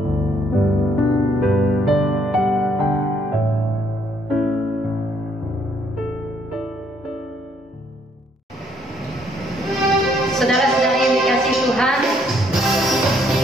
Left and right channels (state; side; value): normal; both; correlation 0.69